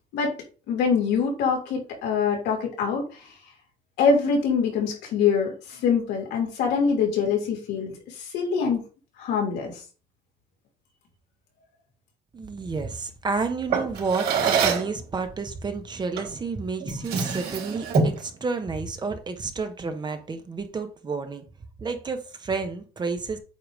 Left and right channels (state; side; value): normal; both; correlation 0.39